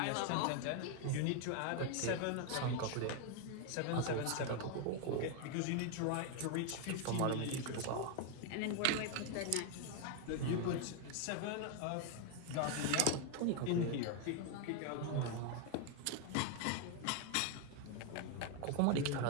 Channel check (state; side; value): different; both; correlation 0.01